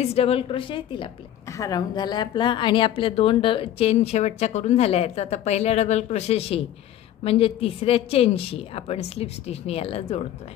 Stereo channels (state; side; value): quieter; right; 11.7 dB